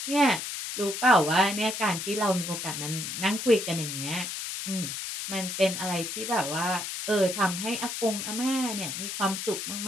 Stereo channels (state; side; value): noise; left; hiss, 5 dB below the sound